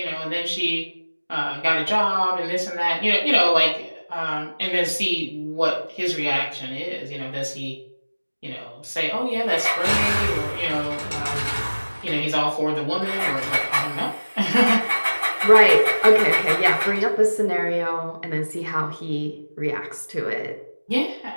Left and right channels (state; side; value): inverted; both; correlation -1.00